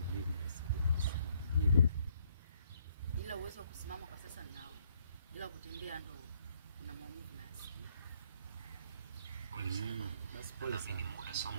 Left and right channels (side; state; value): both; inverted; correlation -0.68